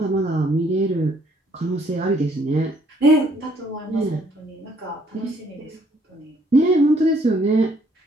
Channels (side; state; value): both; normal; correlation 0.65